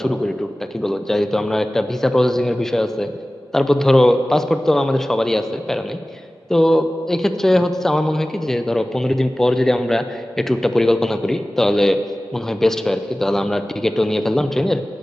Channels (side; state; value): both; normal; correlation 0.97